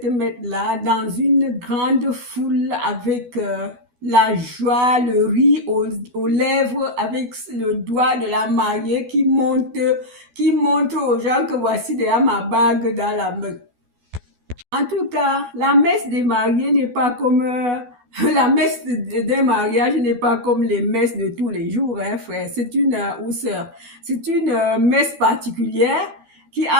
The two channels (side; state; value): left; late; 12 ms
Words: messe-là dans une grande foule avec la joie, le rire aux lèvres, avec le doigt de la mariée qui montre aux gens que voici déjà ma bague dans la main. En tout cas, la messe des mariés n'est pas comme la messe d'un mariage n'est pas comme les messes de tous les jours, hein, frère. C'est une c'est une messe particulière qui